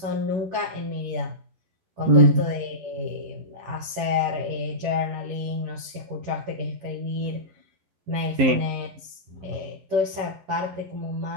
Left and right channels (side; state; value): left; late; 11 ms